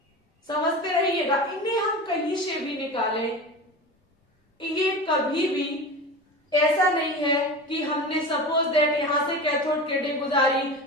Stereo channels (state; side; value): normal; both; correlation 0.30